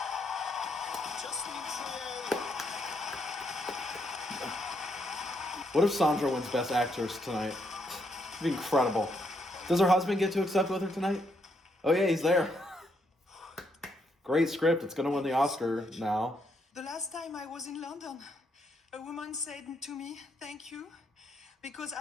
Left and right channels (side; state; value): both; normal; correlation 0.76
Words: Justin Trier. What if Sandra wins Best Actress tonight? It'd be incredible. Does her husband get to accept with her tonight? Oh yeah, he's there. Great script. It's going to win the Oscar now. The last time I was in London, a woman said to me, "Thank you, because